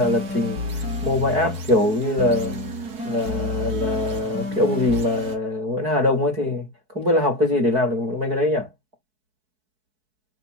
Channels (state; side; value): late; left; 4.6 ms